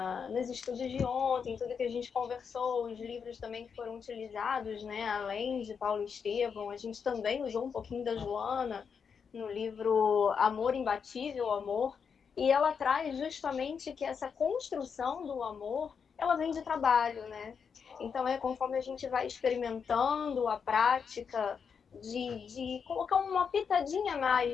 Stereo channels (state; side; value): quieter; right; 6.4 dB